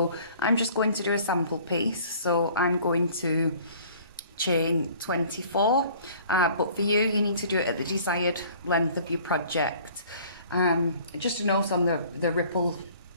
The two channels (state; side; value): inverted; both; correlation -0.52